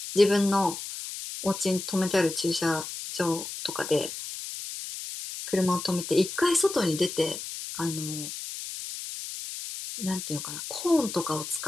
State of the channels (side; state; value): left; noise; hiss, 8 dB below the sound